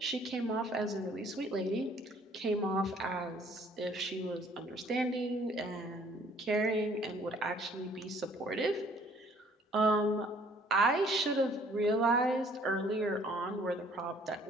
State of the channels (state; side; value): normal; both; correlation 0.59